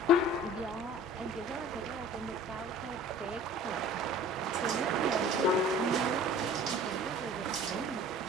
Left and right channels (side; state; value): both; normal; correlation 0.45